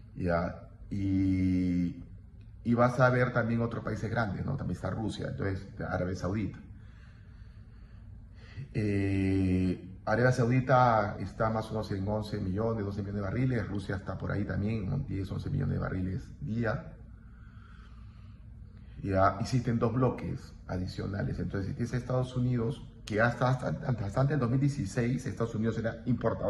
¿ya? Y vas a ver también otros países grandes, ¿no? También está Rusia, entonces Arabia Saudita. Arabia Saudita está más o menos en 11 millones, 12 millones de barriles. Rusia está por ahí también, en 10, 11 millones de barriles día. Ya existen dos bloques adicionales. Entonces, si tienes Estados Unidos, que hasta el 2016, Estados Unidos era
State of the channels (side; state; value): both; identical; correlation 1.00